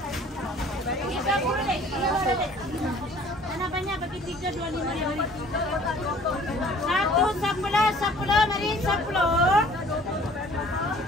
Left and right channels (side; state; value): both; normal; correlation 0.52